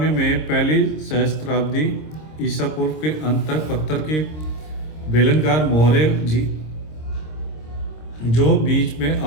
में पहली सहस्त्राब्दी ईसा पूर्व के अंत तक पत्थर के बेलनकार मोहरें जो बीच में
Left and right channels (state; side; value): late; right; 26 ms